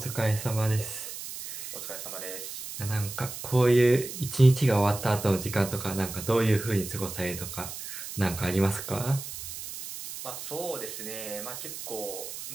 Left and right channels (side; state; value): right; noise; hiss, 9 dB below the sound